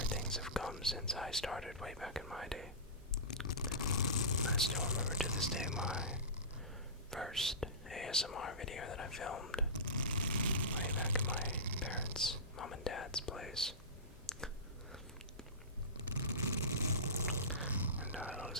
things have come since I started way back in my day. I still remember to this day my first ASMR video that I filmed way back in my parents' mom and dad's place. And it was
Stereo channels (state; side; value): normal; both; correlation -0.20